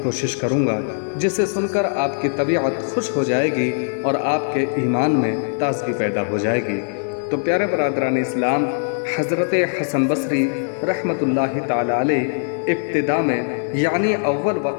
کوشش کروں گا، جسے سن کر آپ کی طبیعت خوش ہو جائے گی اور آپ کے ایمان میں تازگی پیدا ہو جائے گی۔ تو پیارے برادران اسلام، حضرت حسن بصری رحمۃ اللہ تعالیٰ علیہ ابتدا میں یعنی اول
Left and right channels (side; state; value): right; silent; 65 dB below the other